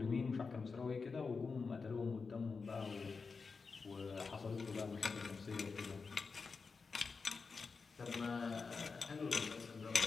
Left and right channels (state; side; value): quieter; right; 4.8 dB